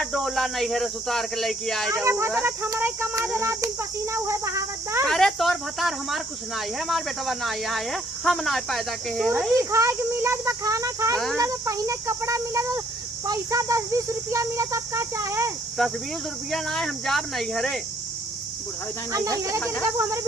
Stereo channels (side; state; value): both; normal; correlation 0.65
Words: डोला नहीं है रे सुतार के लेके आए अरे जाऊ। भदरत हमारे कमा दे रात दिन पसीना उहे बहावत दा। अरे तोर भतार हमार कुछ ना है हमार बेटवा ना आया है हम ना पैदा के है सूजी खाए के मिलत बा खाना खाए के हाँ। मिलत पहिने कपड़ा मिलत पैसा 10-20 रुपया मिलत अब का चाहे? 10-20 रुपया ना है हम जाब नहीं है रे। बुढ़ाई जाए नहीं नहीं रे तेरे बाबू हमारे